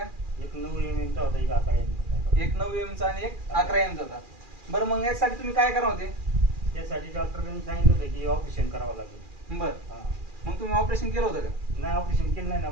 एक 9 mm चा होता, एक 11 mm चा होता. एक 9 एम चा आणि एक 11 एम चा होता. बरं, मग यासाठी तुम्ही काय करणार होते? त्यासाठी डॉक्टरांनी सांगितलं होतं की ऑपरेशन करावं लागेल. बरं, मग तुम्ही ऑपरेशन केलं होतं का? नाही, ऑपरेशन केलं नाही ना.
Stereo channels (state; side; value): late; left; 2.4 ms